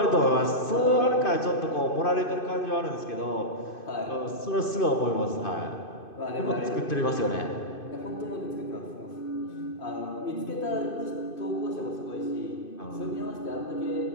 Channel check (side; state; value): right; late; 2.5 ms